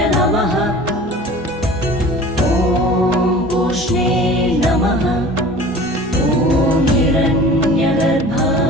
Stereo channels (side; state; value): both; normal; correlation 0.42